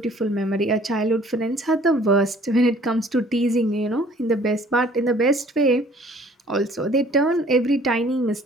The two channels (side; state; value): both; normal; correlation 0.55